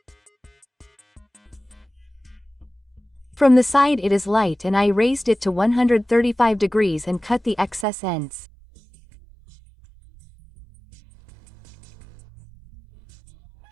From the side it is light and I raised it to 135 degrees and cut the excess ends.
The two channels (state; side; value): drops out; left; at 7.9 s